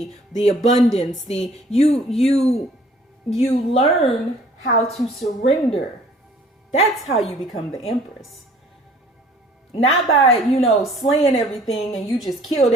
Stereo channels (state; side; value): normal; both; correlation 0.55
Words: the abundance, you learn how to surrender. That's how you become the Empress. Not by, slaying everything and you just killed